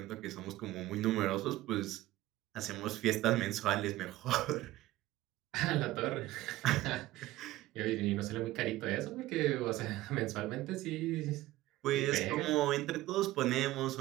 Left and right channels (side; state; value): left; quieter; 16.5 dB